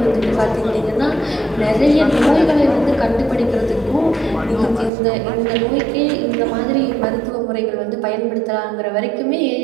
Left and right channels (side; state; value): left; drops out; at 4.9 s